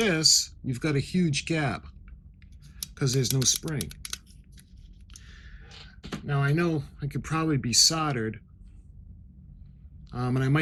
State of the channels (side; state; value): both; identical; correlation 1.00